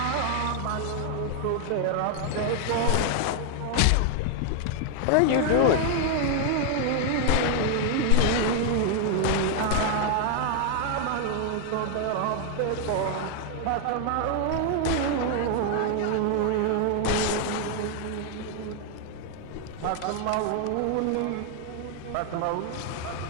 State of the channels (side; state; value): both; different; correlation 0.00